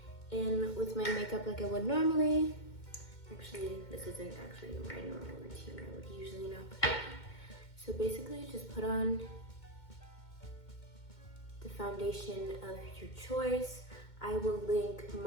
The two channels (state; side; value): late; right; 2.2 ms